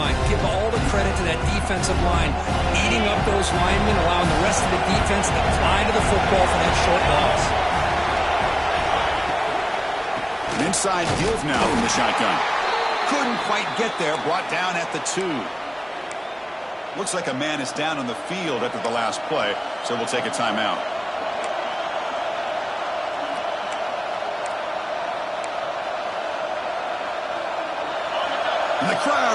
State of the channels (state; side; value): identical; both; correlation 1.00